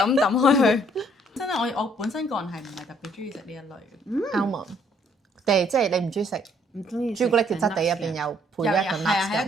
抌開佢。真係我本身個人係唔係特別中意食呢一類嘅。 almond，即係你唔中意食唔中意朱古力嘅質地入邊有配一個係啊，係 nuts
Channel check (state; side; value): normal; both; correlation 0.65